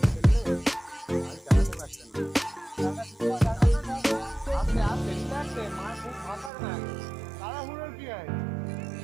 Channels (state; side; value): drops out; left; at 6.5 s